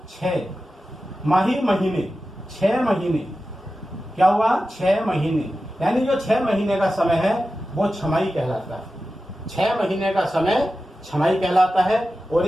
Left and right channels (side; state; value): both; normal; correlation 0.93